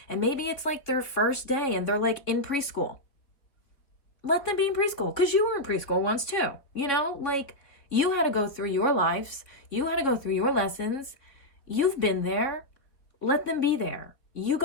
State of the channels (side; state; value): right; late; 3.4 ms